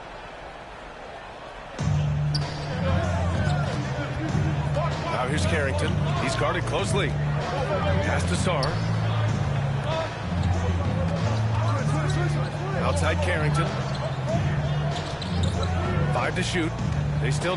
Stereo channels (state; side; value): identical; both; correlation 1.00